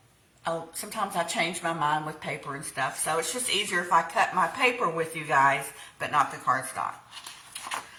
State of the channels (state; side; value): identical; both; correlation 1.00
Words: sometimes I change my mind with paper and stuff. So it's just easier if I cut my paper with you guys, but not the cardstock.